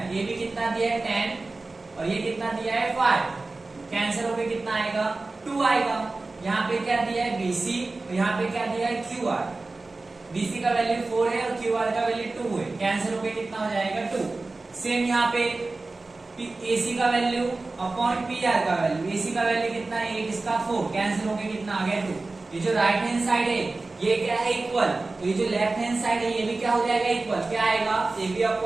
ए बी कितना दिया है 10 और ये कितना दिया है 5, कैंसिल होकर कितना आएगा 2 आएगा। यहाँ पे क्या दिया है बीसी और यहाँ पे क्या दिया है क्यू आर, बीसी का वैल्यू 4 है और क्यू आर का वैल्यू 2 है, कैंसिल होकर कितना हो जाएगा 2। सेम यहाँ पे एसी का वैल्यू अपॉन पी आर का वैल्यू, एसी का वैल्यू कितना है 8, इसका 4, कैंसिल होकर कितना आ गया 2। ये जो राइट हैंड साइड है ये क्या है इक्वल, तो ये जो लेफ्ट हैंड साइड है ये भी क्या हो जाएगा इक्वल, क्या आएगा A B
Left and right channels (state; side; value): quieter; left; 3.4 dB